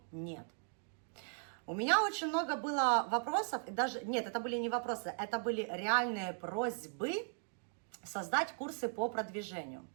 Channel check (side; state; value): left; silent; 52 dB below the other